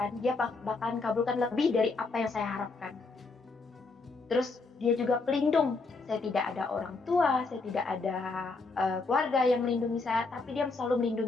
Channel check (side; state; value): right; quieter; 3.9 dB